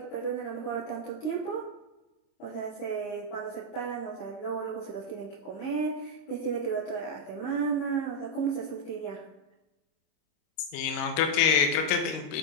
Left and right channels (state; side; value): late; right; 26 ms